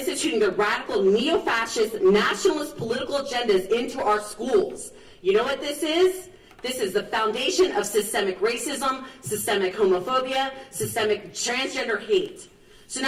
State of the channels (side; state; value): both; identical; correlation 1.00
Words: the radical neo-fascist nationalist political agendas into our schools. You know what this is? This is the foundation of systemic racism, systemic homophobia, systemic transgender hate. So